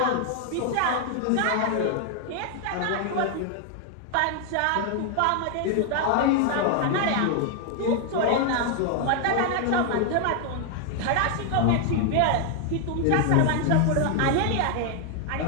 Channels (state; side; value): different; both; correlation 0.00